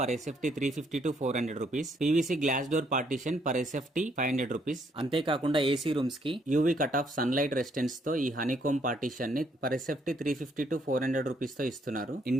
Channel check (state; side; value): normal; both; correlation 0.70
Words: SFT 350 to 400 rupees, PVC glass door partition per SFT 500 rupees. అంతేకాకుండా AC rooms కి UV cut off sunlight resistance తో ఈ honeycomb partition ని per SFT 350 to 400 rupees తో ఇస్తున్నారు.